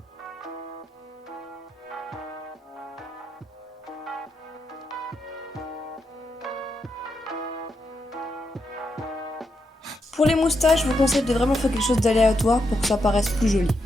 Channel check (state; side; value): normal; both; correlation 0.83